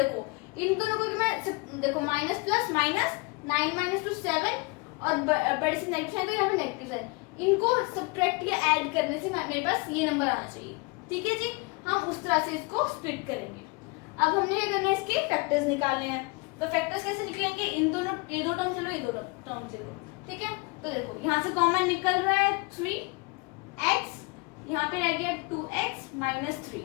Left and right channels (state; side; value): quieter; right; 27.9 dB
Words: इन दोनों को मैं देखो माइनस प्लस माइनस 9 - 2 7, और बड़े से नेगेटिव साइन, तो यहाँ पे नेगेटिव साइन, इनको सब्ट्रैक्ट या ऐड करने से मेरे पास ये नंबर आना चाहिए, ठीक है जी। हम उस तरह से इसको स्प्लिट करेंगे। अब हमने क्या करना है, इसके फैक्टर्स निकालने हैं। तो फैक्टर्स कैसे निकलेंगे, इन दोनों, ये 2 टर्म चलो, ये 2 टर्म चलो, ठीक है। तो देखो यहाँ से कॉमन निकल रहा है 3x, यहाँ पे रह गया 2x - 3,